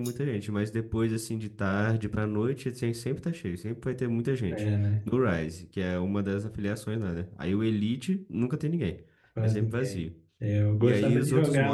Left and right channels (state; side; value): identical; both; correlation 1.00